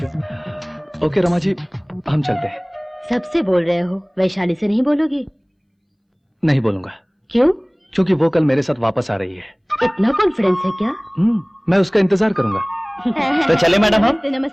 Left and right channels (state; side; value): identical; both; correlation 1.00